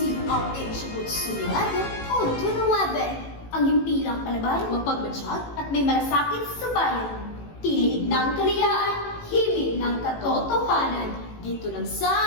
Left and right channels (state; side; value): late; right; 18 ms